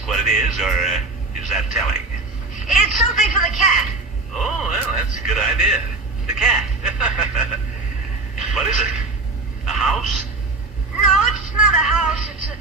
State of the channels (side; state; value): left; quieter; 3.4 dB